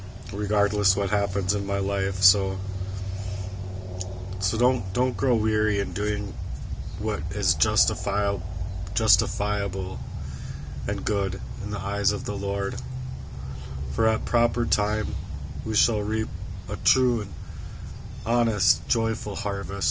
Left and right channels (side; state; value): both; identical; correlation 1.00